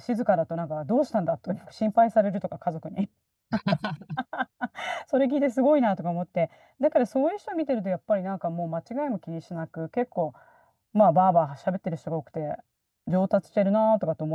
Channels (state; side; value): identical; both; correlation 1.00